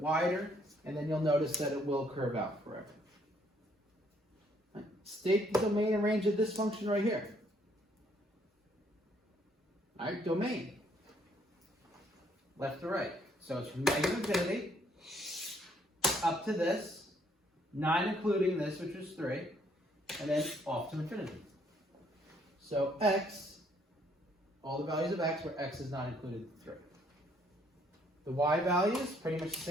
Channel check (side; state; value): both; normal; correlation 0.67